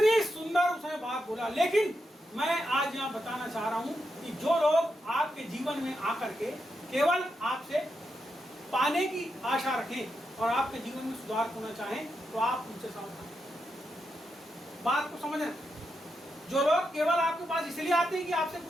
सुंदर उसने बात बोला। लेकिन मैं आज यहाँ बताना चाह रहा हूं कि जो लोग आपके जीवन में आकर के केवल आपसे पाने की आशा रखें और आपके जीवन में सुधार होना चाहें, तो आप उनसे सावधान। बात को समझना, जो लोग केवल आपके पास इसलिए आते हैं कि आपसे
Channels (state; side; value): normal; both; correlation 0.85